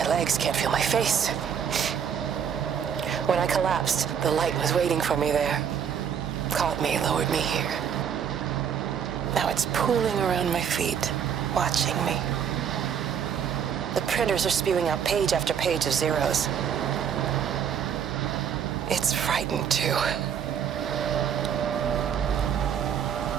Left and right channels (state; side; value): quieter; left; 8.0 dB